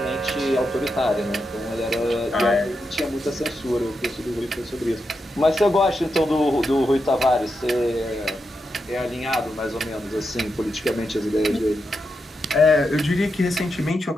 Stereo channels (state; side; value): normal; both; correlation 0.86